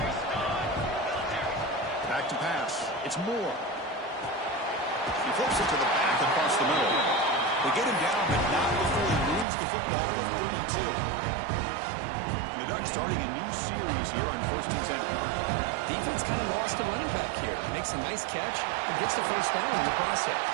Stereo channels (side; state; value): left; drops out; at 9.5 s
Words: Back to pass. It's Moore. He flips it to the back across the middle. They get him down, but not before he moves the football to the 32. And the Ducks starting a new series here on 1st and 10. Defense kind of lost a running back here. Makes a nice catch and gets the first down in the process.